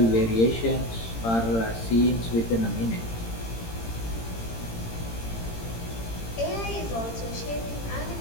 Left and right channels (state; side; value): late; right; 18 ms